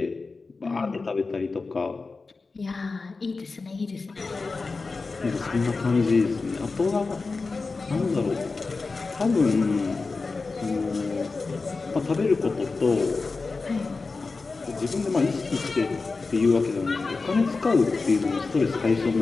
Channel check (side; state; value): right; quieter; 4.0 dB